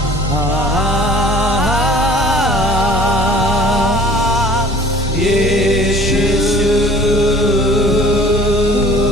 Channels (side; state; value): both; normal; correlation 0.50